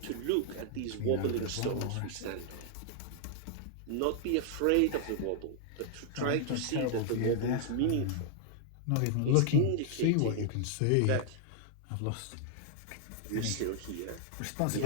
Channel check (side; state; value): both; different; correlation -0.01